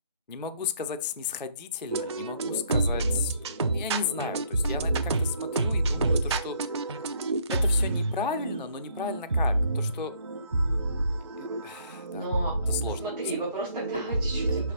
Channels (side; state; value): both; inverted; correlation -0.64